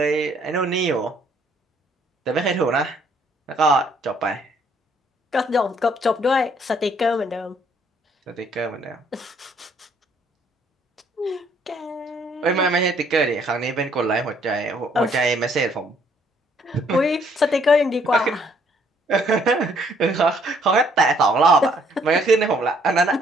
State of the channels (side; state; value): both; normal; correlation 0.65